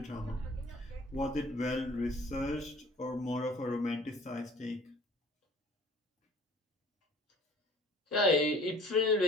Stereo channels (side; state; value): both; normal; correlation 0.50